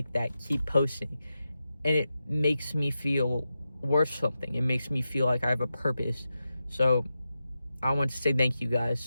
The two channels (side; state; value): both; inverted; correlation -0.90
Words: that. Keep posting. And it makes me feel worth something. It makes me feel like I have a purpose. So I want to say thank you